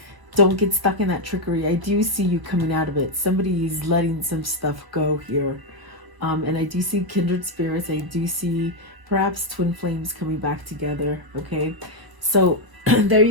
Don't get stuck in that trickery. I do see you coming out of it. Somebody is letting some stuff go here. And I do see kindred spirits. I do see perhaps twin flames coming back together. Okay. So there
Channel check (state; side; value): late; left; 1.0 ms